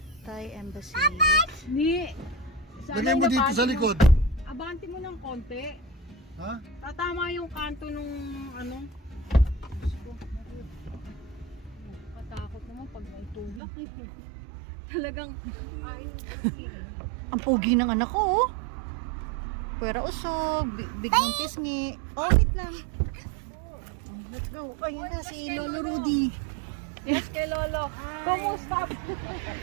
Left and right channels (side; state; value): left; drops out; at 13.6 s